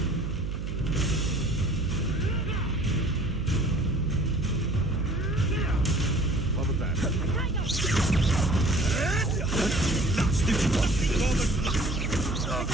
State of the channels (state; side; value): noise; right; hum, 5 dB below the sound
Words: What was that?